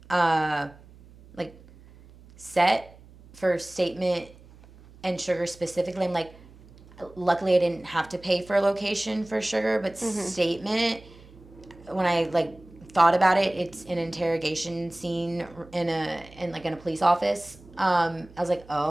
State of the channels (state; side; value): noise; right; hum, 23 dB below the sound